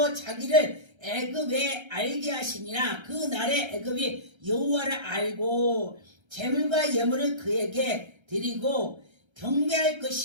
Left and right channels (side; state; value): left; late; 1.3 ms